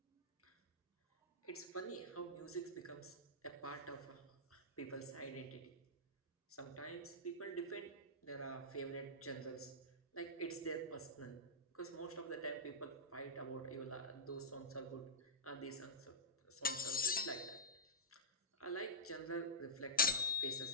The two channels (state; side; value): normal; both; correlation -0.12